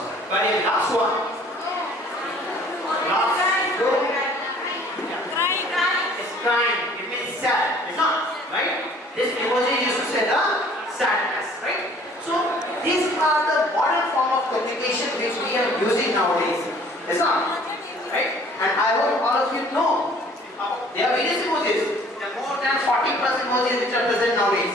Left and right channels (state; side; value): normal; both; correlation 0.54